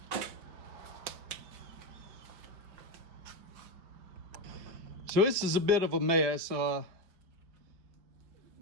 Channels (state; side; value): late; left; 5.3 ms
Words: So this is a bit of a mess.